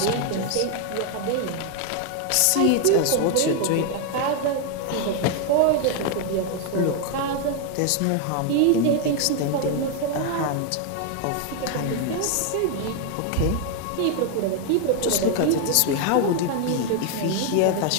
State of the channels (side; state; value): both; different; correlation 0.00